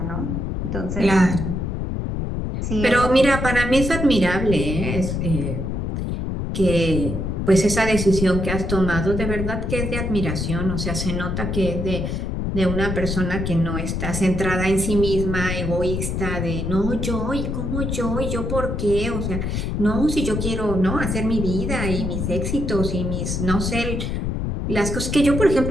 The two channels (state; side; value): noise; left; rumble, 2 dB below the sound